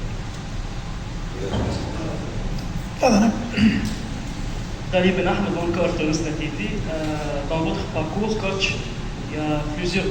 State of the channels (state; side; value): identical; both; correlation 1.00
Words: Dans votre parcours, coach, il y a